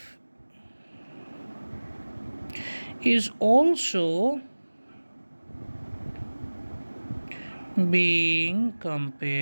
is also being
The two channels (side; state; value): both; inverted; correlation -1.00